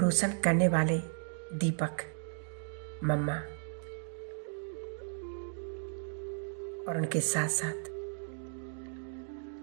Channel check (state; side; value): silent; left; 54 dB below the other